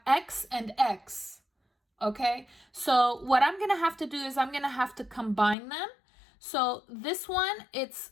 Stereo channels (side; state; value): right; drops out; at 5.6 s